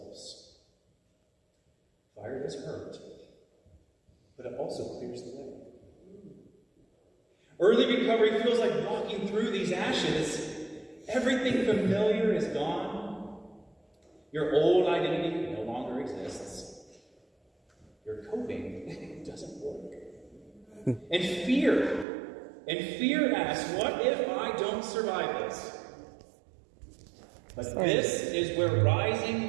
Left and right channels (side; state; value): left; drops out; at 22.1 s